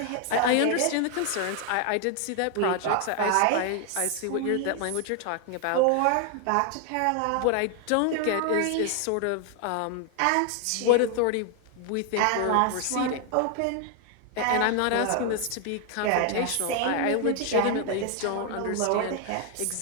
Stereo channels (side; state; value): both; different; correlation 0.00